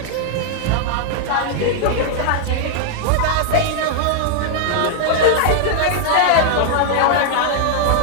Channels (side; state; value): both; different; correlation 0.00